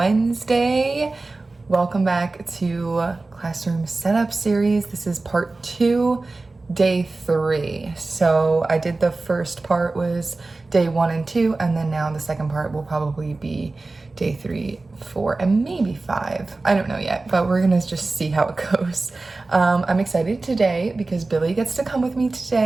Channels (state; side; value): quieter; left; 3.4 dB